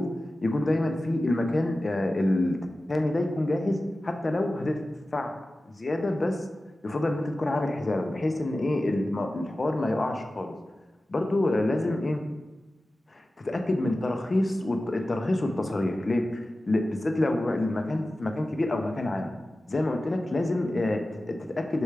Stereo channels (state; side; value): normal; both; correlation 0.95